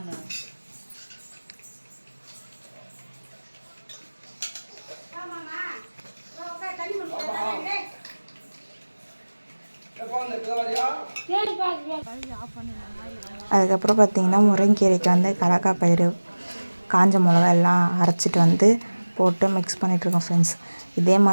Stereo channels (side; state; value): both; inverted; correlation -1.00